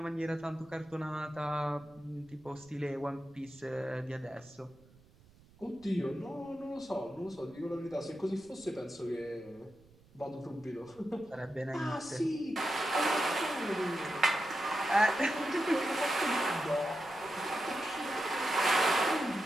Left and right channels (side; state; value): right; noise; rumble, 27 dB below the sound